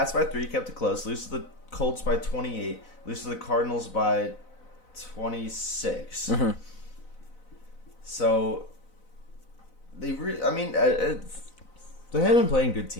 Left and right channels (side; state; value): right; late; 4.0 ms